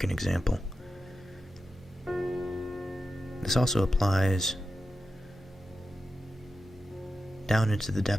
example, this also applies down into the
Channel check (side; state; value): both; normal; correlation 0.91